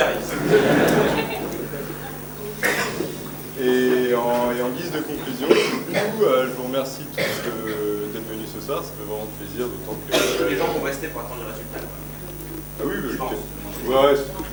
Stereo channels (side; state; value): both; identical; correlation 1.00